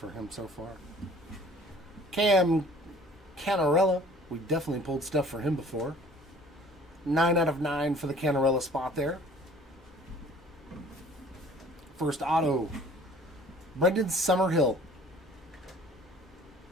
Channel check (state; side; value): normal; both; correlation 0.51